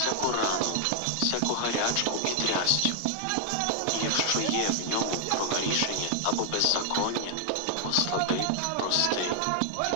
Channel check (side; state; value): both; different; correlation 0.00